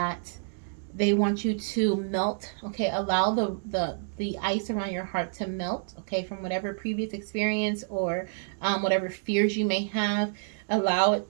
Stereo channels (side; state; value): left; silent; digital silence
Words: they want you to melt. Okay, allow the ice around your heart to melt. Okay, from whatever previous experience or whatever fears you may have. Allow